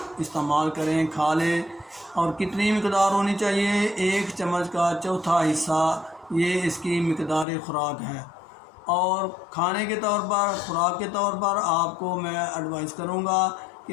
استعمال کریں، کھا لیں۔ اور کتنی مقدار ہونی چاہیے؟ 1 چمچ کا چوتھا حصہ یہ اس کی مقدار خوراک ہے۔ اور کھانے کے طور پر، خوراک کے طور پر آپ کو میں ایڈوائز کروں گا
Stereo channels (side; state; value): right; drops out; at 7.5 s